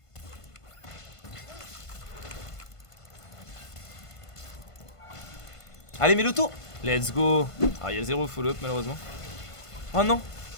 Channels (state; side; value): late; right; 1.5 ms